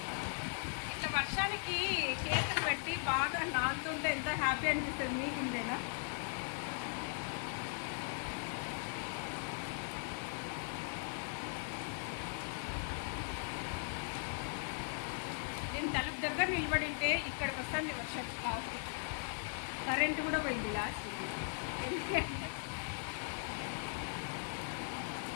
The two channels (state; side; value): silent; right; 52 dB below the other